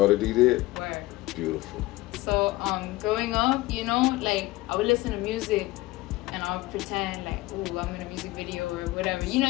D did? Where? Beautiful. So growing up, you know, like I would listen to music and I'll pretend like, ooh, I'm in a music video or whatever. You know,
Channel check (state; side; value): quieter; right; 19.1 dB